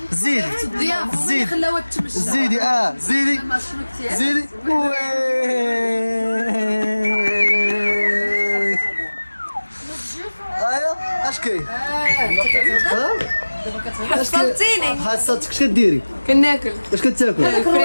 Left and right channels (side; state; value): both; inverted; correlation -1.00